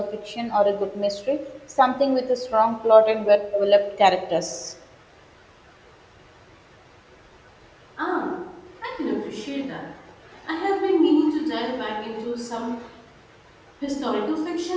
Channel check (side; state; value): both; identical; correlation 1.00